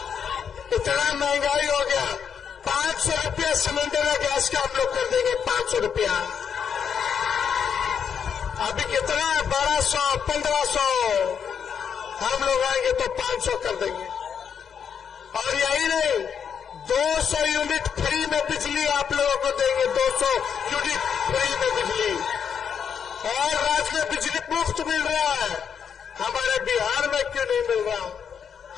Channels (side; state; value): right; quieter; 7.4 dB